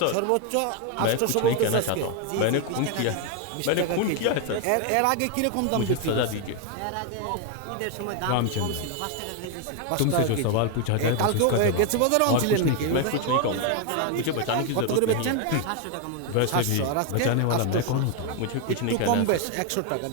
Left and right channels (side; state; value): both; different; correlation 0.01